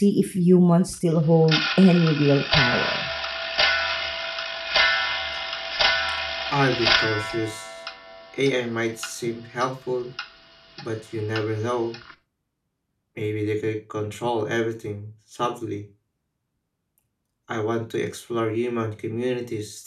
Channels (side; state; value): both; identical; correlation 1.00